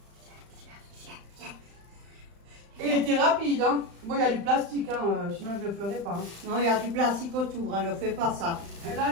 Et il était rapide, hein. Bon, il y a du plastique, hein, sinon je ne le ferais pas. Hein. Non, il y a du plastique autour, hein, ne fais pas ça. Et là,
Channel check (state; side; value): late; left; 35 ms